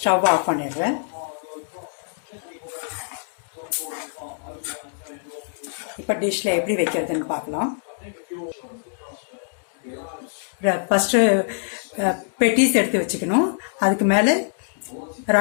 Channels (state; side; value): silent; right; digital silence